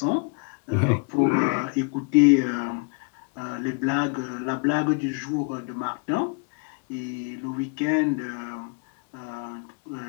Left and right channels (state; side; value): quieter; right; 32.1 dB